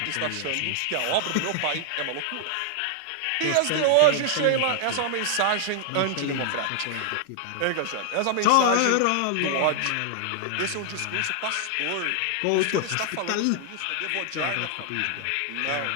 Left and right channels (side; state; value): both; different; correlation 0.00